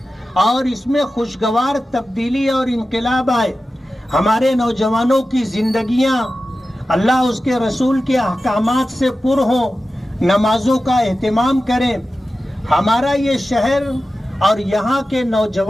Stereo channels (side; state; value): both; normal; correlation 0.94